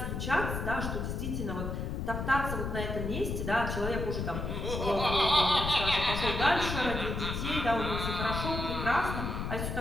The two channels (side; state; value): left; noise; rumble, 3 dB below the sound